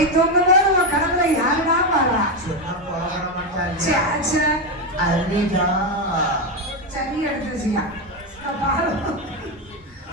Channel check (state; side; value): normal; both; correlation 0.09